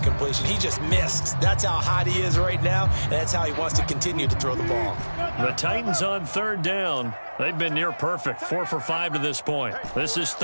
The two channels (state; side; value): inverted; both; correlation -1.00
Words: He just missed. That's how hot he is right now, and that's how he wants to continue to throw the ball. The Titans on 3rd down. They've been near perfect, 4 for 5 to this point. This is